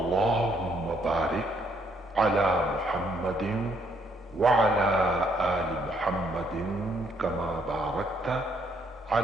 بارك على محمد وعلى آل محمد كما باركت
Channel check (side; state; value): both; normal; correlation 0.70